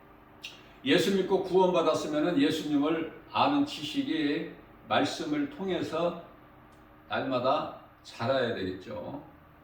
예수 믿고 구원받았으면 예수님을 아는 지식이 말씀을 통해서 날마다 자라야 되겠죠.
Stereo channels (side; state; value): both; identical; correlation 1.00